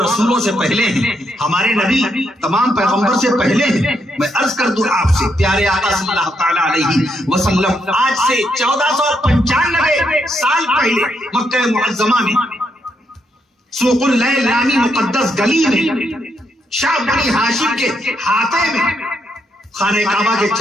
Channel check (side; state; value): both; normal; correlation 0.78